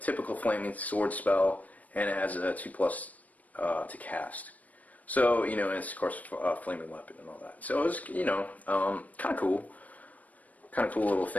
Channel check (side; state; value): right; late; 0.073 ms